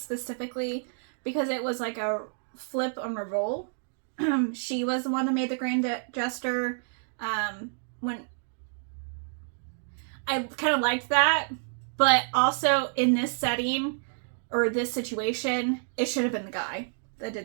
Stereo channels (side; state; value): left; silent; digital silence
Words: because it was like a flip on a role. She was the one that made the Grand Gesture. When I kind of liked that, but also in this setting or this situation, it should have been the guy that